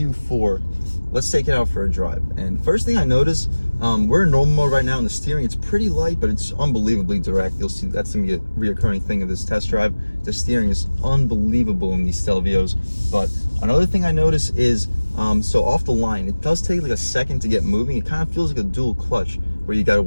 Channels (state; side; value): inverted; both; correlation -1.00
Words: Let's take it out for a drive. And first thing I notice, we're in normal mode right now, and the steering, it's pretty light, but it's unbelievably direct. You'll see that's gonna be a reoccurring thing of this test drive. The steering is unbelievable in these Stelvios. But another thing I notice is, so off the line, it does take like a second to get moving. It kind of feels like a dual clutch where you gotta